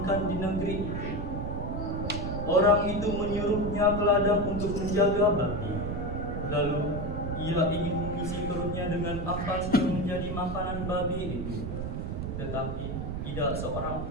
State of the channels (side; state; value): right; noise; rumble, 4 dB below the sound